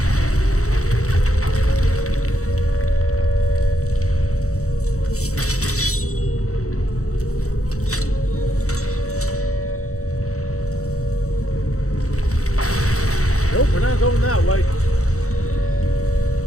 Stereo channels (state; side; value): late; right; 0.65 ms